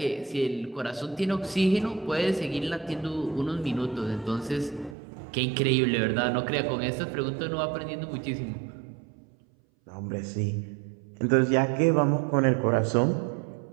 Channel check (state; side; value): drops out; left; at 5.0 s